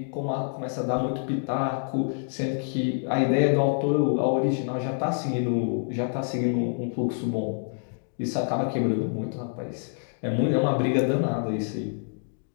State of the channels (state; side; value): silent; right; 60 dB below the other